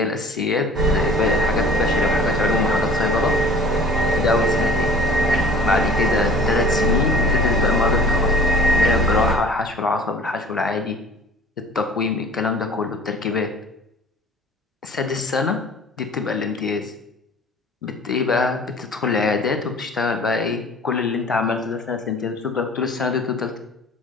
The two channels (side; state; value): both; normal; correlation 0.46